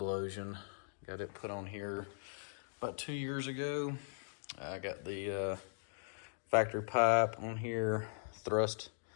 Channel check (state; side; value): silent; right; digital silence